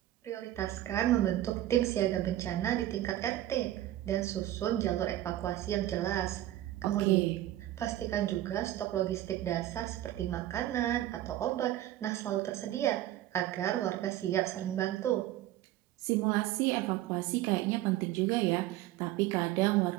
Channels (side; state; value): left; quieter; 14.0 dB